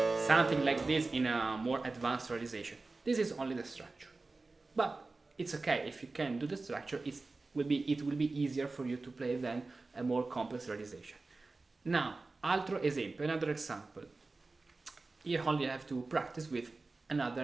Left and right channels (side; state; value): left; quieter; 3.6 dB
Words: Something like this in a more advanced realization. This is only the structure, but it's okay if you can do the structure. It will be easier for you to play than a more complex realization. Now, another example. You only have to practice with